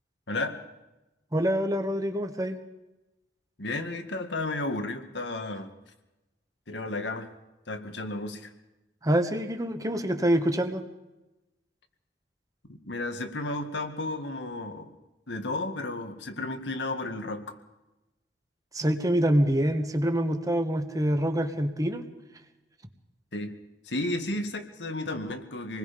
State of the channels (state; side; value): normal; both; correlation 0.67